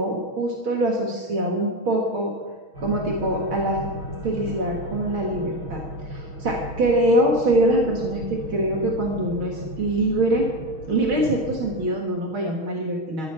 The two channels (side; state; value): left; late; 6.3 ms